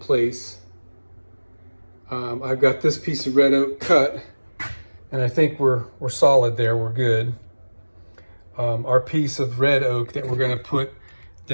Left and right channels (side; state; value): both; inverted; correlation -1.00